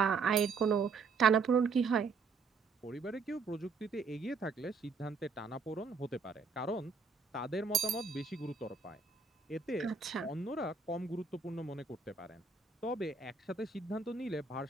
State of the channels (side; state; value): left; quieter; 4.7 dB